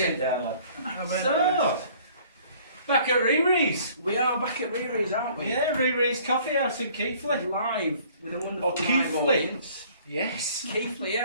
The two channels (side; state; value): both; inverted; correlation -0.55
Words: down, lad. So, back at RiRi's. We are back at RiRi's, aren't we? Yeah, RiRi's Coffee House in Keighley. Live with a wonderful live Keighley. audience. Yes. Keighley,